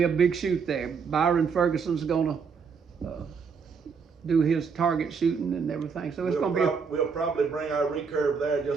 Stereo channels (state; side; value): quieter; left; 5.8 dB